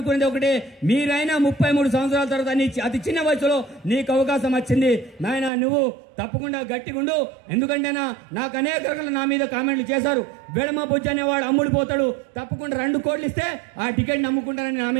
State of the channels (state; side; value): drops out; left; at 5.5 s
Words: ఒకటే, మీరైనా 33 సంవత్సరాల తర్వాత అతి చిన్న వయసులో నీకు అవకాశం వచ్చింది నాయన, నువ్వు తప్పకుండా గట్టిగా ఉండు. ఎందుకంటే నాకు అనేక రకాల నా మీద కామెంట్లు చేశారు. వెడమ బొజ్జు అనేవాడు అమ్ముడు పోతాడు, తప్పకుండా 2 కోట్లు ఇస్తే ఆ టికెట్ నమ్ముకుంటానని నా